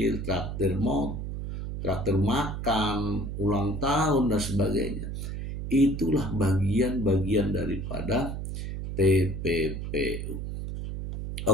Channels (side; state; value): right; noise; hum, 5 dB below the sound